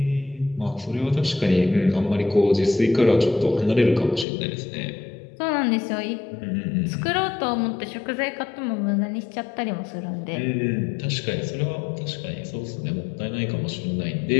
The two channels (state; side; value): drops out; right; at 4.2 s